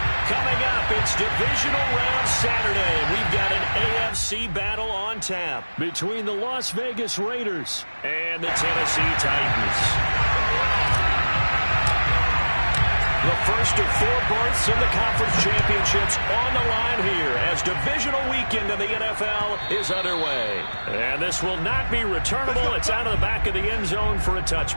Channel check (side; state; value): both; inverted; correlation -1.00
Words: Coming up, it's divisional round Saturday. We've got an AFC battle on tap between the Las Vegas Raiders and the Tennessee Titans. The first of 4 berths in the conference championships on the line here as divisional weekend in the NFL is underway. And this will not be returnable. It's out of the back of the end zone for a